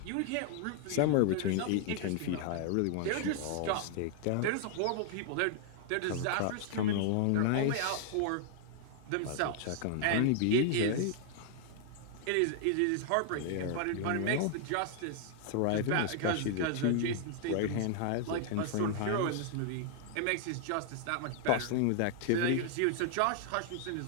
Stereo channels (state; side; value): different; both; correlation 0.00